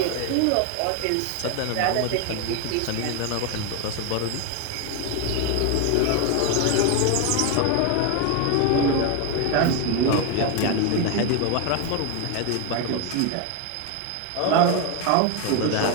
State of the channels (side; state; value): both; different; correlation 0.01